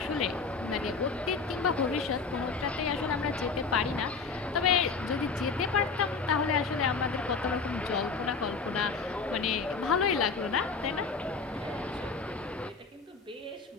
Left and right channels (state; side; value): quieter; right; 4.7 dB